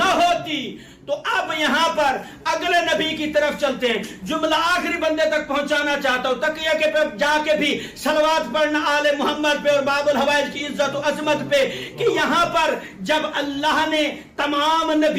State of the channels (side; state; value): both; identical; correlation 1.00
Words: ہوتی. تو اب یہاں پر اگلے نبی کی طرف چلتے ہیں. جملہ آخری بندے تک پہنچانا چاہتا ہوں, تقیہ کے پہ جا کے بھی صلوات پڑھنا آل محمد پہ اور باب الحوائج کی عزت و عظمت پہ, کہ یہاں پر جب اللہ نے تمام